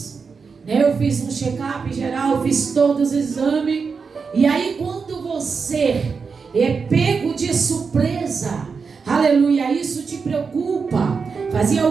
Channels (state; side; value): quieter; left; 5.3 dB